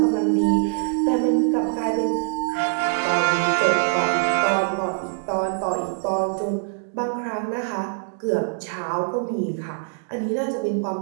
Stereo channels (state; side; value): silent; left; digital silence